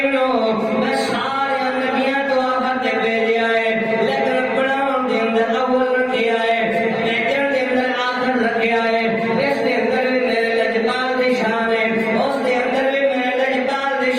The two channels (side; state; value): both; identical; correlation 1.00